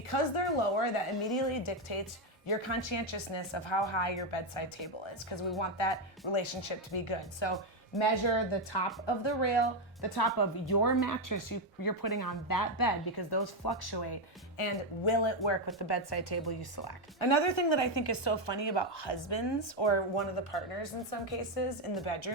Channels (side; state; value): both; normal; correlation 0.05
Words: they're lower, that immediately dictates your conscientiousness of how high your bedside table is, because we want that relationship to be good. So measure the top of the rail, the top of your mattress you're putting on that bed, because those fluctuate, and will it work with the bedside table you select? Another thing that I think is so funny about husbands, or one of the partners in some cases in the